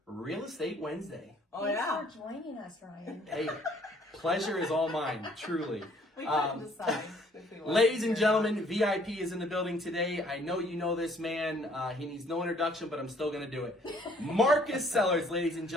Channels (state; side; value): normal; both; correlation 0.60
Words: Real Estate Wednesday. Thanks for joining us, Ryan. Hey, pleasure is all mine, truly. We couldn't decide. Ladies and gentlemen, VIP is in the building today. I know you know this man. He needs no introduction, but I'm still going to do it. Marcus Sellards, ladies and